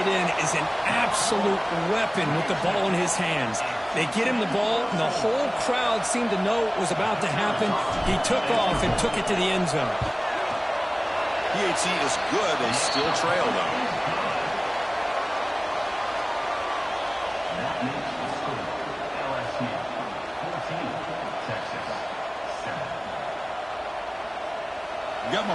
end is an absolute weapon with the ball in his hands. They get him the ball, and the whole crowd seemed to know what was about to happen. He took off and took it to the end zone. PAT is good. They still trail, though. That makes the score LSU 14, Texas 7. You got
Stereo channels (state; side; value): identical; both; correlation 1.00